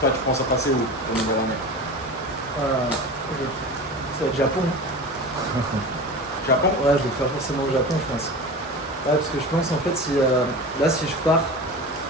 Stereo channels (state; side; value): normal; both; correlation 0.31